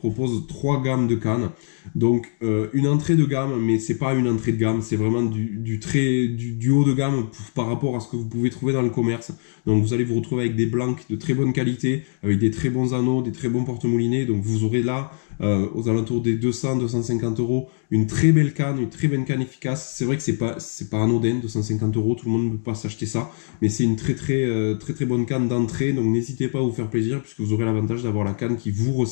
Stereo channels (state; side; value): silent; right; digital silence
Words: 3 gammes de cannes. Donc une entrée de gamme, mais c'est pas une entrée de gamme, c'est vraiment du haut de gamme par rapport à ce que vous pouvez trouver dans le commerce. Donc vous allez vous retrouver avec des blancs de très bonne qualité, avec des très bons anneaux, des très bons porte-moulinets. Donc vous aurez là, aux alentours des 200-250 euros, une très belle canne, une très belle canne efficace. C'est vrai que c'est pas anodin, 250 euros, tout le monde ne peut pas s'acheter ça, mais c'est une très bonne canne d'entrée. Donc n'hésitez pas à vous faire plaisir, puisque vous aurez l'avantage d'avoir la canne qui vous